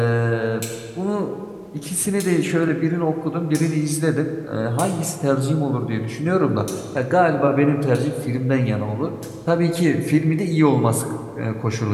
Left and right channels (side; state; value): both; identical; correlation 1.00